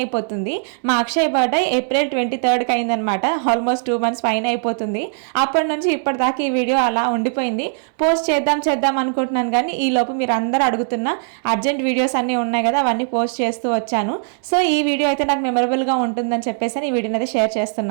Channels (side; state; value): left; silent; digital silence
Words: అయిపోతుంది. మా అక్షయ్ బర్త్డే April 23rd అయిందనమాట. ఆల్మోస్ట్ 2 months పైన అయిపోతుంది. అప్పటి నుంచి ఇప్పటిదాకా ఈ వీడియో అలా ఉండిపోయింది. పోస్ట్ చేద్దాం అనుకుంటున్నాను, కానీ ఈ లోపు మీరు అందరూ అడుగుతున్న అర్జెంట్ వీడియోస్ అన్నీ ఉన్నాయి కదా, అవన్నీ పోస్ట్ చేస్తూ వచ్చాను. సో ఈ వీడియో అయితే నాకు మెమరబుల్ గా ఉంటుందని చెప్పేసి ఈ వీడియోని అయితే షేర్